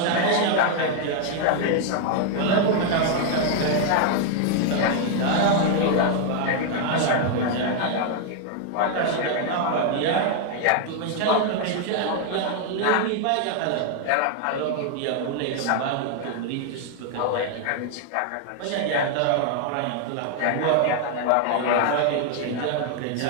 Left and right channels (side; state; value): both; different; correlation 0.00